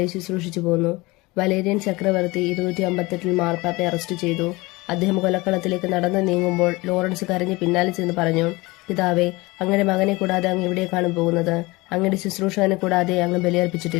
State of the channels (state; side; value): quieter; right; 22.6 dB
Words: ശുശ്രൂഷിച്ചു പോന്നു. വലേരിയൻ ചക്രവർത്തി 258 മാർപ്പാപ്പയെ അറസ്റ്റ് ചെയ്തു. അദ്ദേഹം കൊലക്കളത്തിലേക്ക് നടന്നു നീങ്ങുമ്പോൾ ലോറൻസ് കരഞ്ഞ് പിന്നാലെ ചെന്ന് പറഞ്ഞു, പിതാവേ, അങ്ങയുടെ മകനെ കൂടാതെ അങ്ങ് എവിടേക്കാണ് പോകുന്നത്? അങ്ങയുടെ ശുശ്രൂഷകനെ കൂടാതെ അങ്ങ്